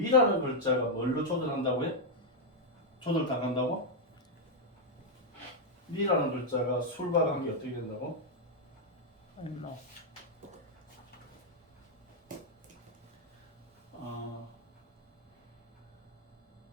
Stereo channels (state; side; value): normal; both; correlation -0.01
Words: 글자가 뭘로 조절한다고요? 조절당한다고? 미라는 글자가 술과 관계 어떻게 된다고? 얼마?